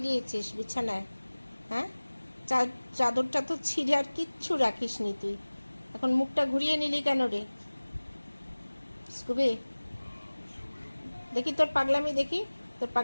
দিয়েছিস বিছানায়? হ্যাঁ, চাদরটা তো ছিঁড়ে আর কিচ্ছু রাখিস নি তুই। এখন মুখটা ঘুরিয়ে নিলি কেন রে স্কুবি? দেখি তোর পাগলামি, দেখি তোর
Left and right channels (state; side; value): inverted; both; correlation -1.00